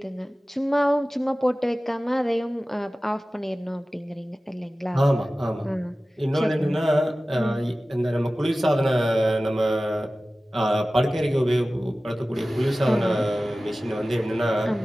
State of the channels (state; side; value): normal; both; correlation 0.96